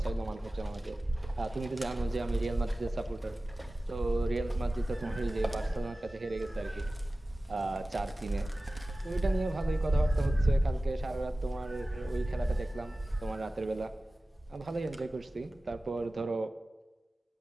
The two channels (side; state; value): both; normal; correlation 0.96